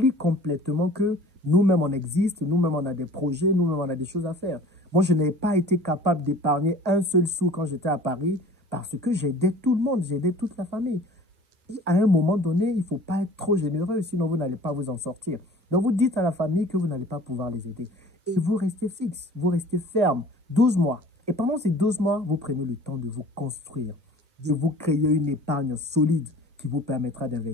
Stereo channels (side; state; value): both; normal; correlation 0.45